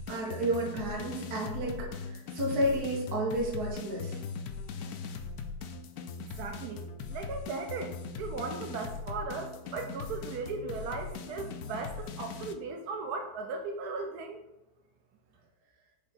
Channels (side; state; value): left; late; 4.6 ms